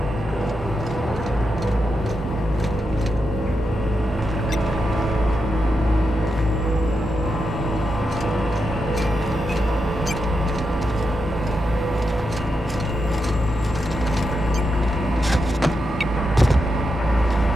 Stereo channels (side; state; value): both; normal; correlation 0.86